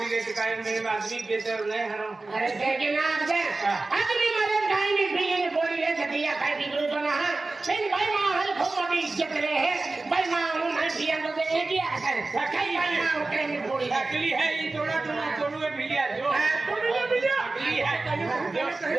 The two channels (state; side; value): quieter; left; 3.3 dB